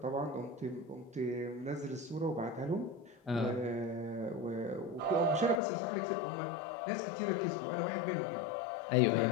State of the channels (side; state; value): right; drops out; at 5.6 s